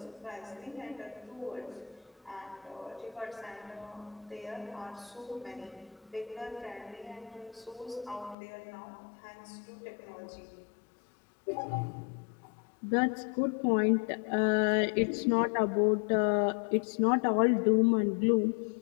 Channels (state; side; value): drops out; right; at 8.3 s